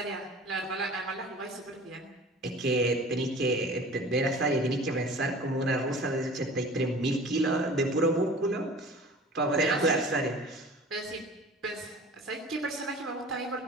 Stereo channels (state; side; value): normal; both; correlation 0.43